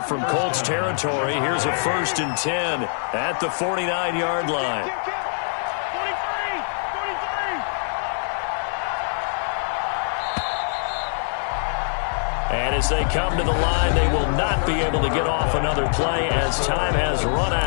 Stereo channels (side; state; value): right; silent; digital silence